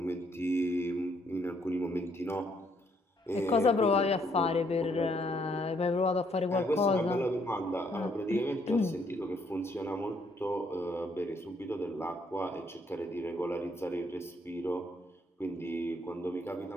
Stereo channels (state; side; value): normal; both; correlation 0.70